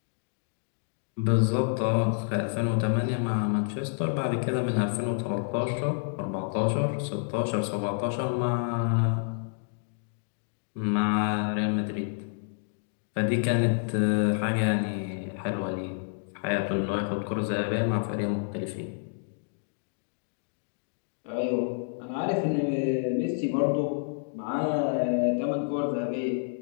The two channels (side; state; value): right; silent; digital silence